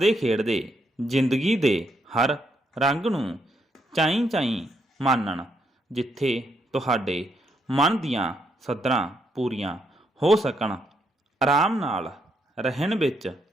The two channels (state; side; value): normal; both; correlation 0.76